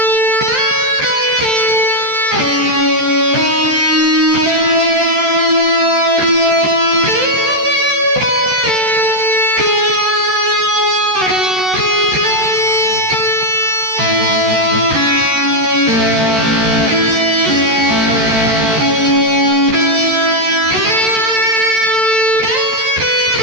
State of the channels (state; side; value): late; left; 13 ms